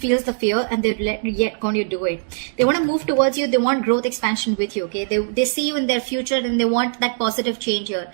the fear and they're yet going to do it. They want to move towards you. They want growth expansion with you, okay? They see you in their future and they want that positive change here.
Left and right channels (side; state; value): left; silent; digital silence